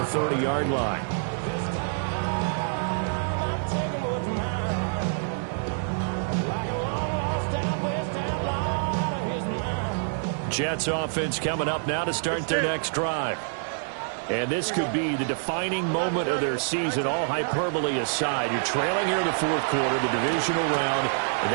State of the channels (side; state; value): left; silent; digital silence